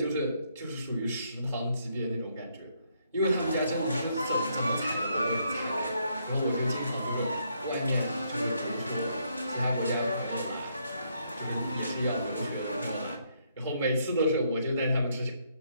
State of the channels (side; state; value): both; inverted; correlation -0.73